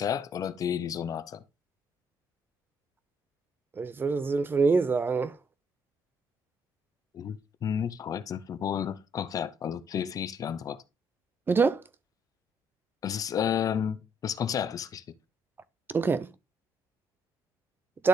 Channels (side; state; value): both; normal; correlation 0.69